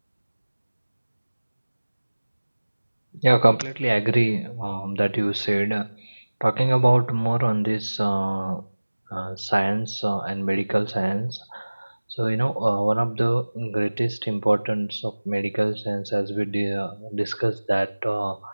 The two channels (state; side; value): inverted; both; correlation -1.00